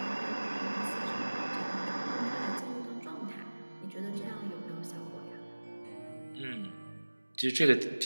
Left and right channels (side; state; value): both; inverted; correlation -1.00